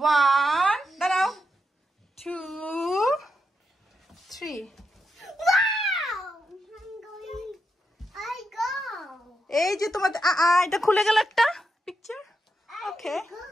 1 দাঁড়াও, 2 3। এই যে তোমার এটা খুলে গেল একটা picture. Okay,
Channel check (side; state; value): both; normal; correlation 0.84